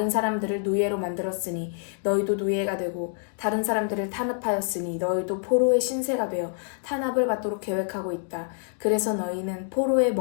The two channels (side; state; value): right; silent; digital silence